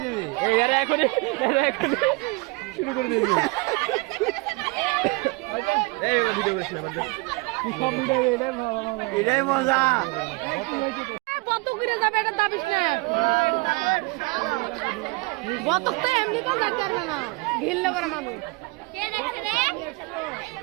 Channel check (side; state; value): left; quieter; 26.1 dB